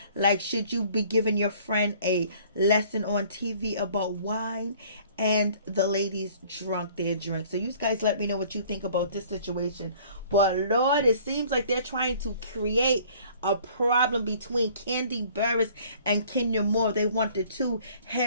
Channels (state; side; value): inverted; both; correlation -0.54